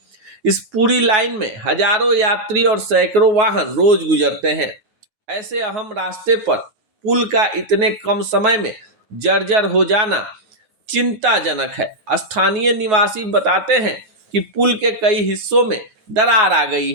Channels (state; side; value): late; left; 9.4 ms